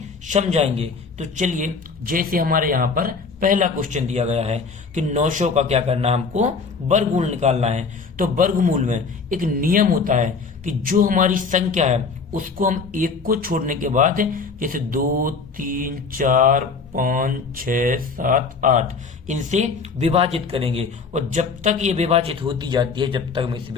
समझाएंगे। तो चलिए, जैसे हमारे यहाँ पर पहला क्वेश्चन दिया गया है कि 900 का क्या करना है, हमको वर्गमूल निकालना है। तो वर्गमूल में एक नियम होता है कि जो हमारी संख्या है उसको हम एक को छोड़ने के बाद, जैसे 2, 3, 4, 5, 6, 7, 8 इनसे विभाजित करेंगे और जब तक ये विभाजित होती जाती है, जब तक हम इसे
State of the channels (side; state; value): right; quieter; 4.8 dB